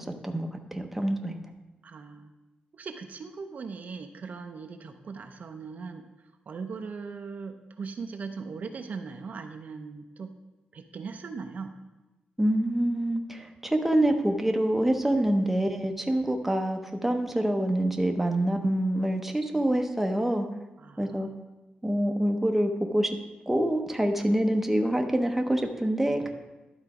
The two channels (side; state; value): both; normal; correlation 0.95